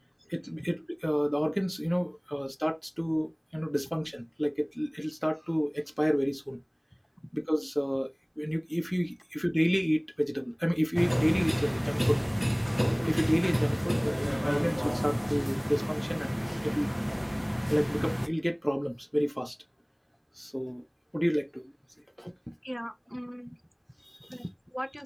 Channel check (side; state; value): both; identical; correlation 1.00